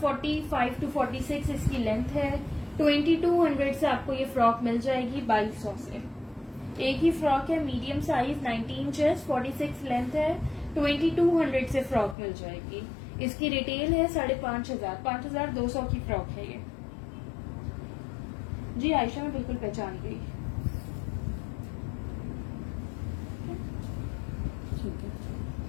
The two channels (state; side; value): drops out; right; at 12.2 s